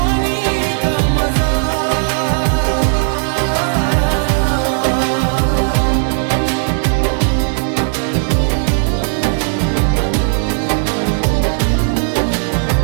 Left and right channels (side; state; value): left; silent; 60 dB below the other